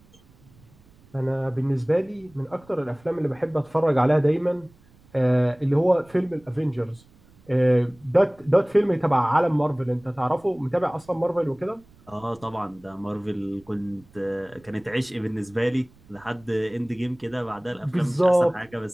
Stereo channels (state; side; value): noise; right; rumble, 28 dB below the sound